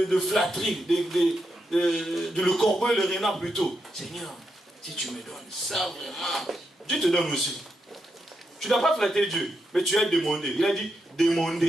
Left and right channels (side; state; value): both; normal; correlation 0.84